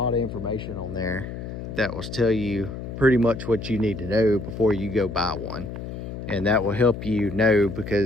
of information on there that will tell you pretty much what you need to know before you go buy one, and that will help you know,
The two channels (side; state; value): left; noise; hum, 8 dB below the sound